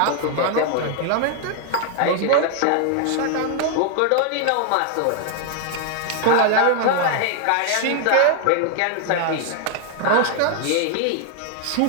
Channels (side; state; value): both; different; correlation 0.00